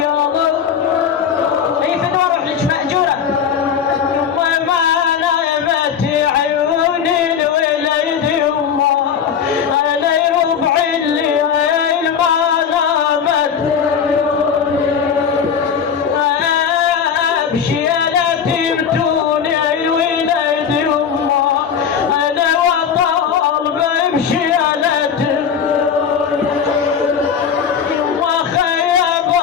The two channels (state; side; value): quieter; right; 7.5 dB